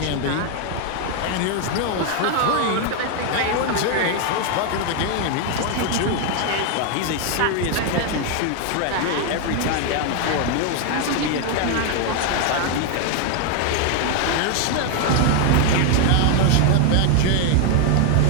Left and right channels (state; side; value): different; both; correlation 0.01